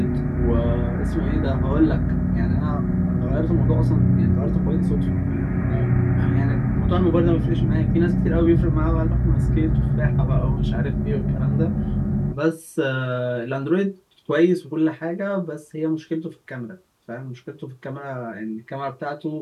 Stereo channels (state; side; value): identical; both; correlation 1.00